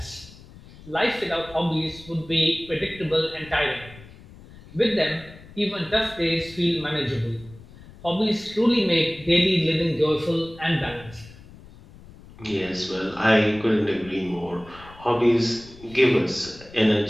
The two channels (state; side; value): noise; left; rumble, 21 dB below the sound